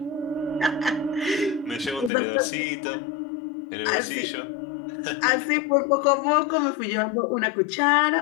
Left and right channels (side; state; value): right; drops out; at 2.1 s